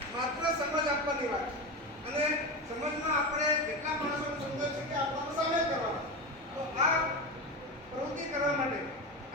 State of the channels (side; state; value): both; normal; correlation 0.20